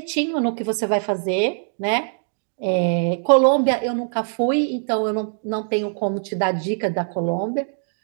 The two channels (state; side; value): silent; left; digital silence